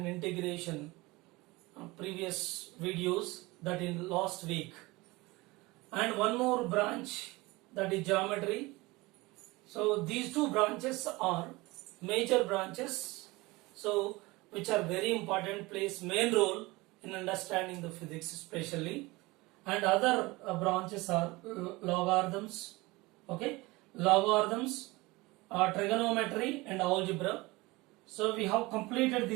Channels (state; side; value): quieter; left; 22.2 dB